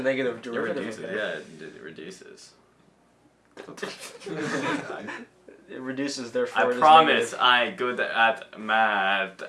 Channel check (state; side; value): identical; both; correlation 1.00